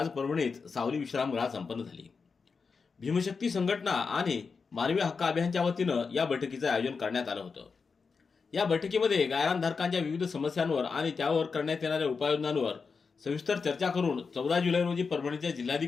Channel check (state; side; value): quieter; right; 5.1 dB